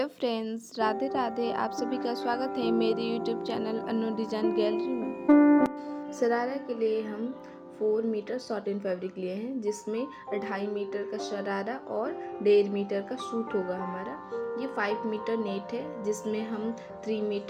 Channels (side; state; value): both; identical; correlation 1.00